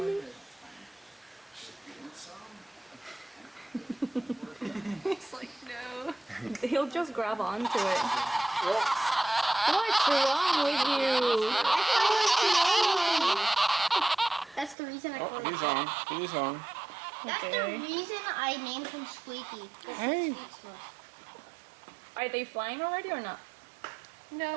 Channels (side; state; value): left; drops out; at 14.8 s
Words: He's like, no. He'll just grab onto it. What's wrong with you? That's the reason I call him. He's on. He's on. That's the reason I named him Squeaky. Hey. Are they flying already or not?